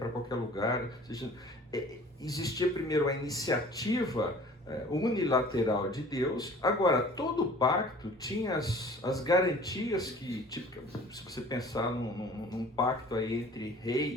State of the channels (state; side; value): normal; both; correlation 0.47